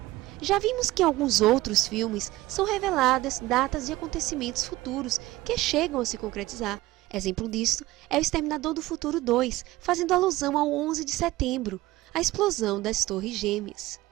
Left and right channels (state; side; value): quieter; left; 18.0 dB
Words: Já vimos que em alguns outros filmes são reveladas datas de acontecimentos futuros que chegam a se concretizar. Exemplo disto é o Exterminador do Futuro 2, fazendo alusão ao 11 de setembro, a explosão das Torres Gêmeas.